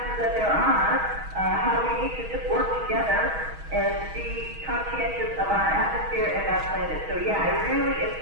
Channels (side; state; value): left; late; 6.3 ms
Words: that there are, how we need to just work together and be conscientious of our atmosphere and our planet. So yeah, it really